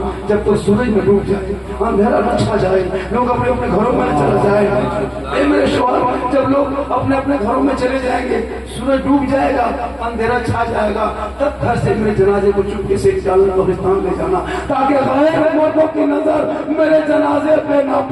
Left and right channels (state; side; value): identical; both; correlation 1.00